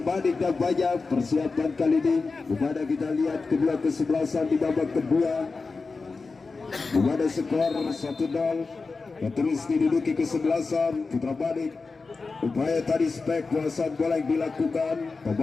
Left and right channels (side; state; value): right; quieter; 4.2 dB